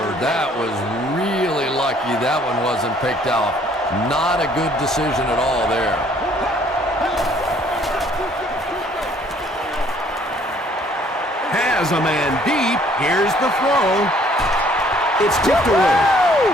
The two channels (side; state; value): both; normal; correlation 0.60